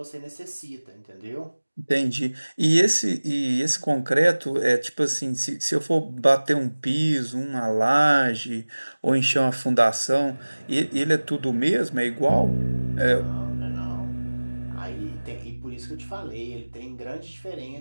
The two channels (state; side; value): inverted; both; correlation -1.00